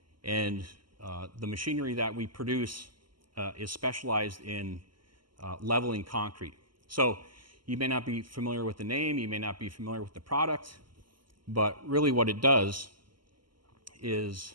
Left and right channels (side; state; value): left; late; 0.72 ms